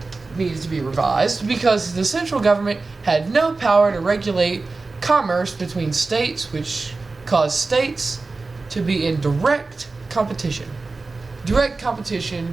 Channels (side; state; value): left; quieter; 3.7 dB